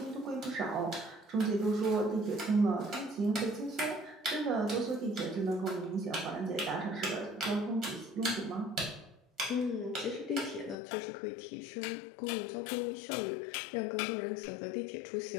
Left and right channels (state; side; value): drops out; right; at 10.8 s